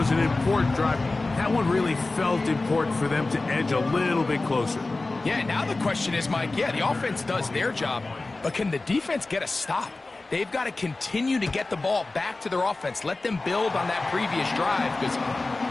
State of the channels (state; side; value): quieter; right; 3.3 dB